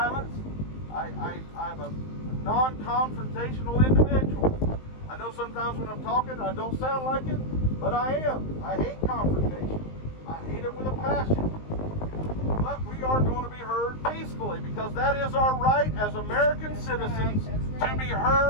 I'm a non-confrontational individual. I know sometimes when I'm talking I don't sound like it, but I am. I hate confrontation. I hate it with a passion. But we are going to be heard peacefully because that is our right as American citizens to be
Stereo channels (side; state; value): right; late; 19 ms